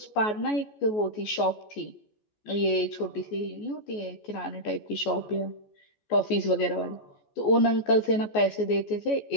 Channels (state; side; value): late; right; 14 ms